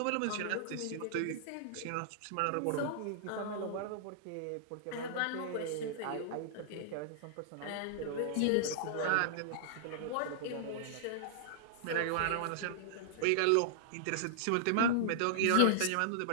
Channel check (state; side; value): different; both; correlation -0.01